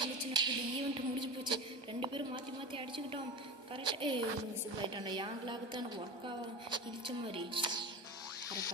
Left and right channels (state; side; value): late; left; 1.2 ms